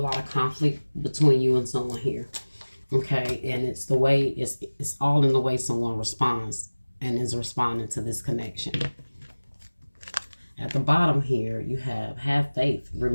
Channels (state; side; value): inverted; both; correlation -1.00